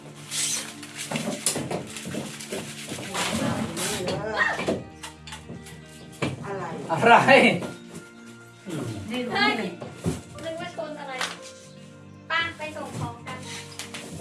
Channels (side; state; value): both; identical; correlation 1.00